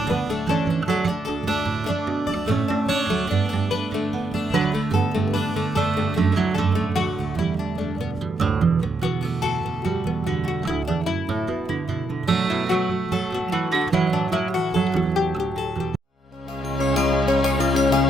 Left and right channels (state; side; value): normal; both; correlation 0.79